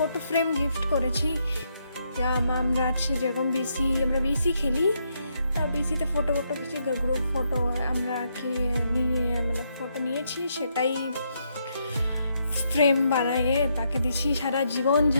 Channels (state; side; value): inverted; both; correlation -0.77